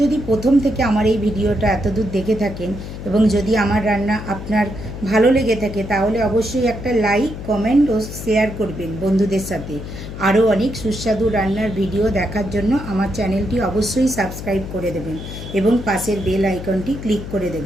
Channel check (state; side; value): noise; left; hum, 9 dB below the sound